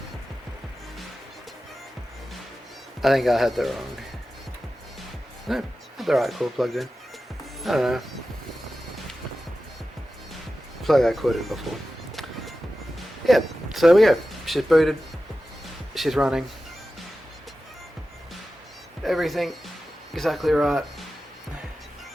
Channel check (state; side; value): normal; both; correlation 0.94